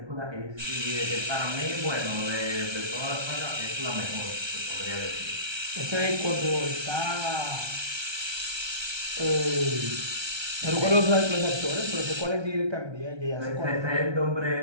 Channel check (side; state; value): left; late; 1.3 ms